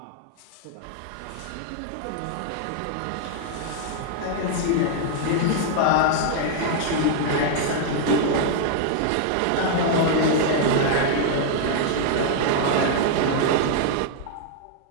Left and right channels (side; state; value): both; different; correlation -0.01